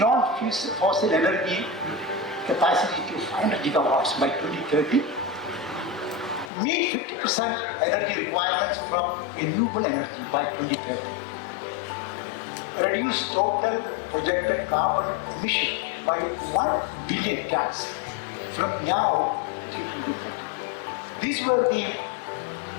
energy capacity to 500 gigawatts by 2030. Meet 50% energy requirements from renewable energy by 2030. Reduce total projected carbon emission by 1 billion tons from now till 2030. These were the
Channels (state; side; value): drops out; right; at 6.5 s